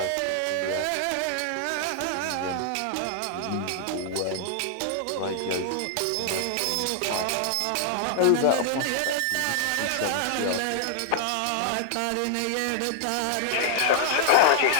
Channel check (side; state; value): both; different; correlation -0.01